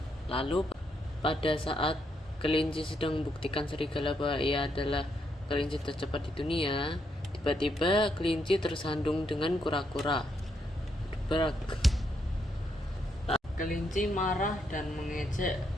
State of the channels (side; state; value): both; normal; correlation 0.78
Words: Lalu pada saat kelinci sedang membuktikan serigala bahwa ia adalah kelinci tercepat di dunia, tiba-tiba kelinci tersandung dengan kura-kura. Berak. Kelinci marah dan mengejek